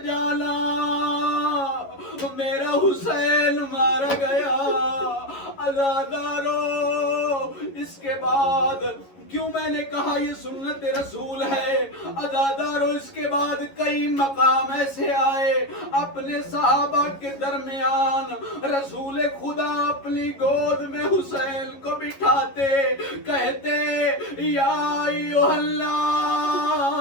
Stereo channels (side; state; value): right; late; 11 ms